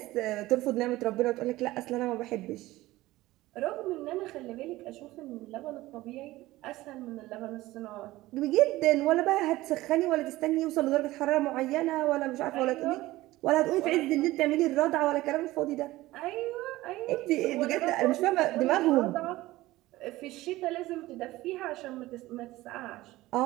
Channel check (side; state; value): left; quieter; 17.7 dB